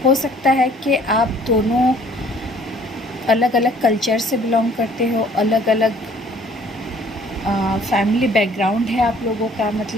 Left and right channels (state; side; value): normal; both; correlation 0.57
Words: हो सकता है कि आप दोनों अलग अलग कल्चर से बिलोंग करते हो, अलग अलग फैमिली बैकग्राउंड है आप लोगों का,